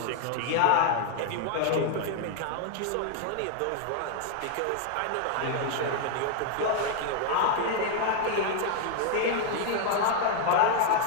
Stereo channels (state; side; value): different; both; correlation 0.00